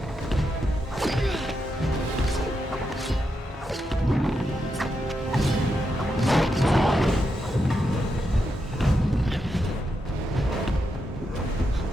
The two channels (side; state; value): both; normal; correlation 0.84